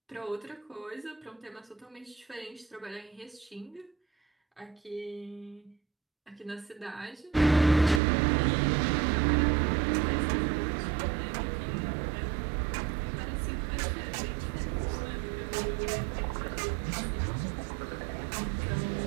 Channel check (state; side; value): drops out; left; at 8.0 s